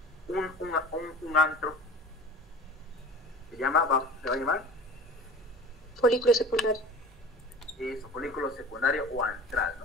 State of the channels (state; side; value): normal; both; correlation 0.40